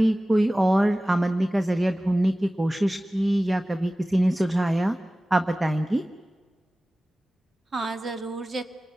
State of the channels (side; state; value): both; normal; correlation 0.97